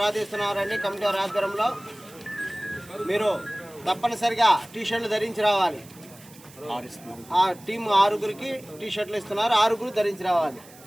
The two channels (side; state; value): right; noise; hiss, 22 dB below the sound